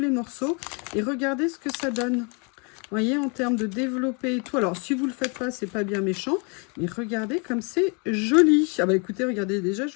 morceaux et regarder ce que ça donne. Vous voyez, en termes de développer et tout. Alors, si vous le faites pas, c'est pas bien méchant, mais regardez comme c'est joli. Ah bah écoutez, regardez, déjà, je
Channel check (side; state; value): right; quieter; 34.2 dB